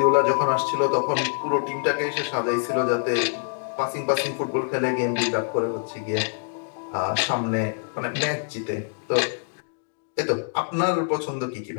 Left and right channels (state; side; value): silent; right; 62 dB below the other